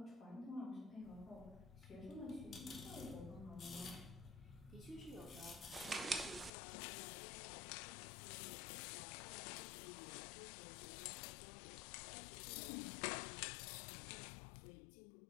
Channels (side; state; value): right; drops out; at 6.5 s